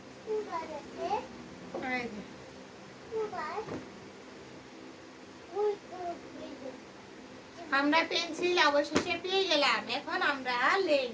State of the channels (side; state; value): both; identical; correlation 1.00